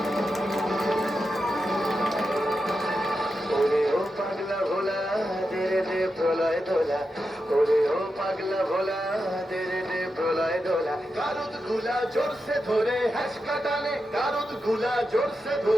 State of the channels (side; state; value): both; normal; correlation 0.88